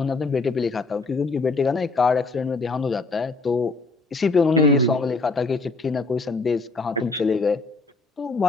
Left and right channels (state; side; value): quieter; right; 3.7 dB